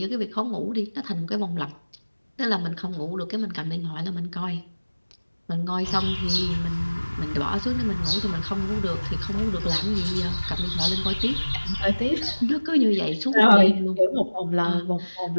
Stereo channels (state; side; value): inverted; both; correlation -1.00